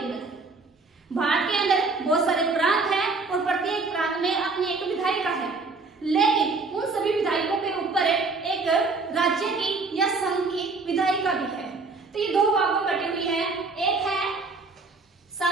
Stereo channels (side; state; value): left; quieter; 3.9 dB